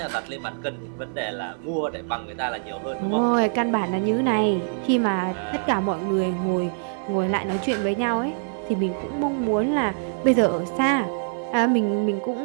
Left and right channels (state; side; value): silent; left; 56 dB below the other